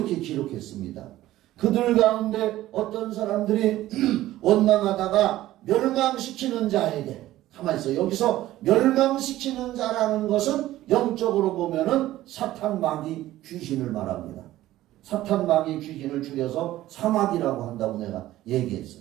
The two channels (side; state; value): left; quieter; 15.1 dB